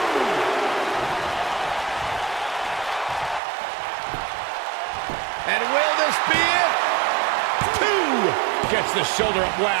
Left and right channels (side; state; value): left; drops out; at 3.4 s